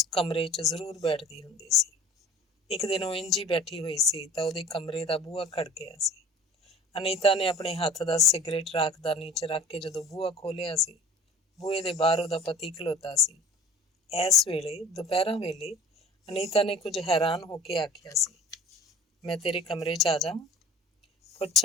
ਕਮਰੇ 'ਚ ਜ਼ਰੂਰ ਬੈਠਦੀ ਹੁੰਦੀ ਸੀ। ਇੱਕ ਦਿਨ ਉਹ ਇੰਝ ਹੀ ਬੈਠੀ ਹੋਈ ਸੀ ਤਾਂ ਉਹਦੇ ਕਮਰੇ ਦਾ ਬੂਹਾ ਖੜਕਿਆ ਸੀ। ਅਨੀਤਾ ਨੇ ਆਪਣੇ ਹੱਥ ਦਾ ਸਿਗਰਟ ਰਾਖਦਾਨੀ 'ਚ ਰੱਖ ਕੇ ਜਦੋਂ ਬੂਹਾ ਖੋਲ੍ਹਿਆ ਸੀ, ਬੂਹੇ ਦੇ ਬਾਹਰ ਉਹਦਾ ਪਤੀ ਖਲੋਤਾ ਸੀ। ਇਸ ਵੇਲੇ ਦੁਪਹਿਰਾਂ ਵੇਲੇ ਅਨੀਤਾ ਨੇ ਕੁਝ ਹੈਰਾਨ ਹੋ ਕੇ ਆਖਿਆ ਸੀ, ਮੈਂ ਤੇਰੇ ਕਮਰੇ 'ਚ ਆ ਜਾਵਾਂ?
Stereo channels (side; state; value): both; normal; correlation 0.44